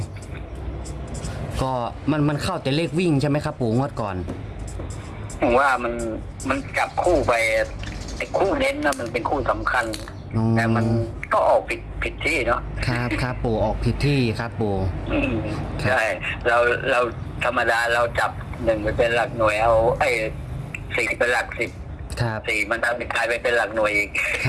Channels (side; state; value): both; identical; correlation 1.00